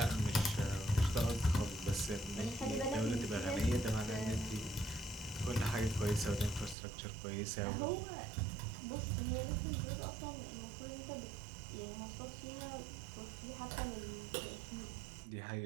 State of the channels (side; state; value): left; drops out; at 6.8 s